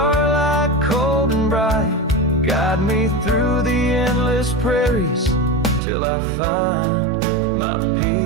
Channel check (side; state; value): left; drops out; at 5.8 s